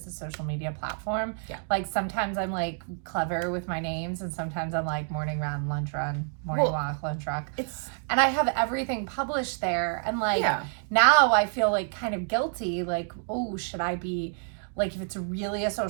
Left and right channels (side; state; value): left; silent; 59 dB below the other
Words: a social media platform. Yeah. Sometimes I'm clever with my names, and sometimes I'm morning run, lunch run, morning walk, lunch walk. And I have everything published there. And now I feel kind of guilty. Oh, should I be, if it's really a